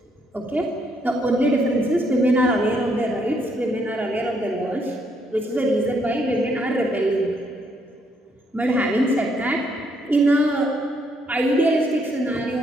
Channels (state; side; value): normal; both; correlation 0.73